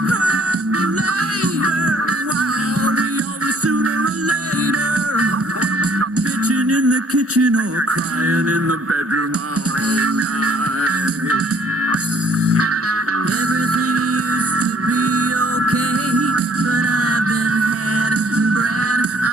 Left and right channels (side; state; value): both; normal; correlation 0.60